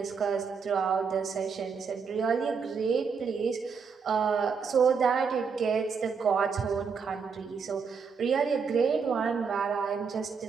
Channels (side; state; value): left; quieter; 5.8 dB